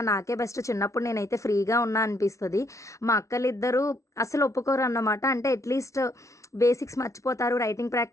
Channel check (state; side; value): late; right; 0.14 ms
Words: నాకే బెస్ట్ చిన్నప్పుడు నేనైతే ఫ్రీగా ఉన్నా అనిపిస్తది. మా అక్కలిద్దరూ అసలు ఒప్పుకోరన్నమాట. అంటే అట్‌లీస్ట్ బేసిక్స్ మర్చిపోతారు. రైటింగ్